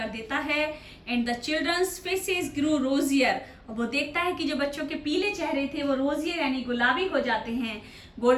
देता है। And the children's faces grew rosier, और वो देखता है कि जो बच्चों के पीले चेहरे थे वो रोजियर यानी गुलाबी हो जाते हैं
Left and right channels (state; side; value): identical; both; correlation 1.00